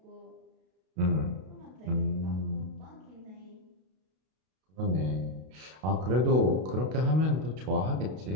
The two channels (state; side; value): late; left; 32 ms